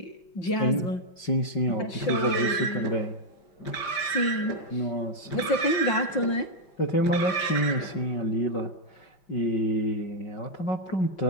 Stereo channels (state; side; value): late; right; 5.6 ms